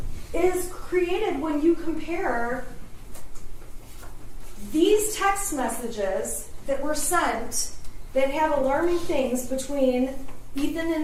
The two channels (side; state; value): both; identical; correlation 1.00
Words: is created when you compare these text messages that were sent that have alarming things between Ethan and